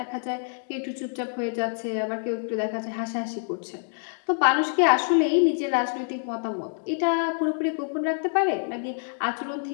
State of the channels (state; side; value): silent; right; 60 dB below the other